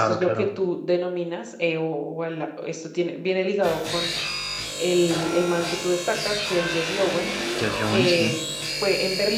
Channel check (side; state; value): both; identical; correlation 1.00